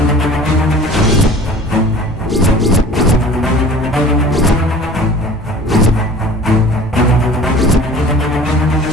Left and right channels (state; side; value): normal; both; correlation 0.44